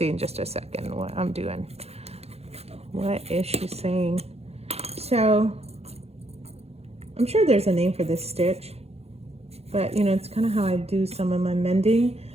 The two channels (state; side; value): late; left; 0.30 ms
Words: in just a second what I'm doing. What is she saying? So I'm sure there's a name for this stitch, but you know, it's kind of how I do some of my mending.